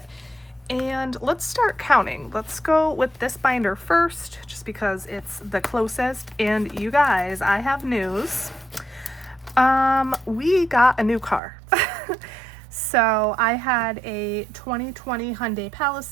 and let's start counting. Let's go with this binder first, just because it's the closest. And you guys, I have news. We got a new car. So I had a 2020 Hyundai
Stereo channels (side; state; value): left; drops out; at 11.4 s